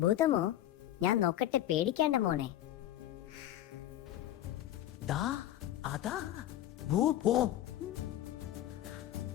ഭൂതമോ? ഞാൻ നോക്കട്ടെ, പേടിക്കേണ്ട മോനെ. ദാ അതാ ഭൂതം.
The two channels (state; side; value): quieter; right; 13.0 dB